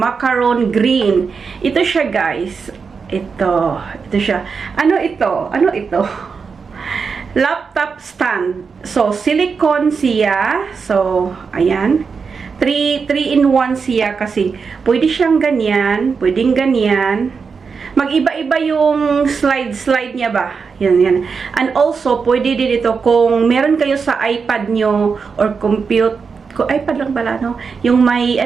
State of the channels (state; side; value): quieter; left; 5.4 dB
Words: green. Ito siya guys. Ito siya. Ano ito? Ano ito? Laptop stand. So, silicone siya. So, ayan. 3-in-1 siya kasi pwede siyang ganyan, pwedeng ganyan. Mag-iba-iba yung slide niya ba? Yan. And also, pwede din ito kung meron kayo sa iPad nyo or iPad lang pala, no? Yung may,